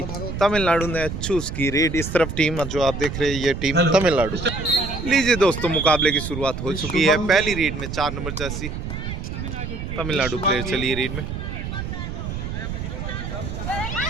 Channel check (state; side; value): noise; right; rumble, 6 dB below the sound